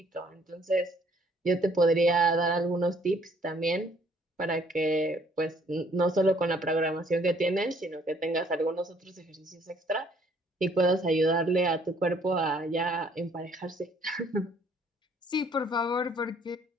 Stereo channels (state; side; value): normal; both; correlation 0.62